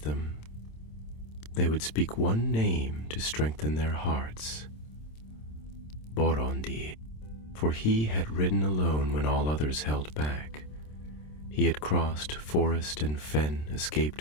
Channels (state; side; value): late; right; 27 ms